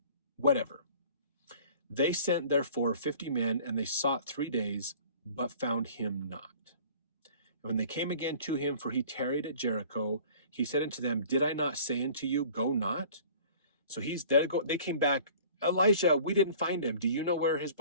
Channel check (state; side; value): inverted; both; correlation -0.47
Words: Whatever. They sent therefore 50 men, and they sought 3 days, but found him not. And when they came again to him, for he tarried at Jericho, he said unto them, did I not say unto you, go not? So they came back, Elijah, we didn't find him. Do you know where his